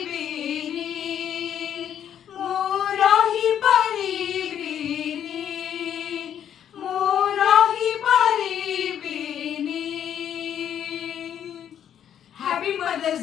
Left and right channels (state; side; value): quieter; right; 9.6 dB